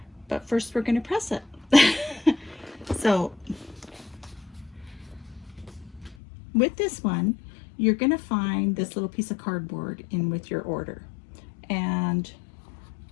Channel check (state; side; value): drops out; right; at 6.2 s